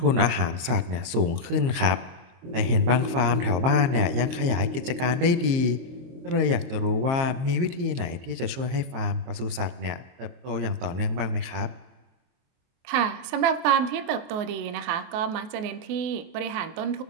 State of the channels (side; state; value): left; late; 23 ms